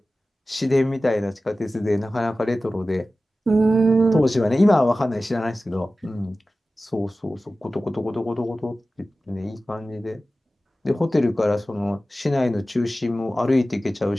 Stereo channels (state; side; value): normal; both; correlation 0.95